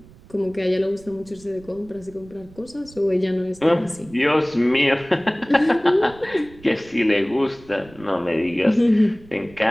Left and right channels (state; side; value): noise; right; rumble, 23 dB below the sound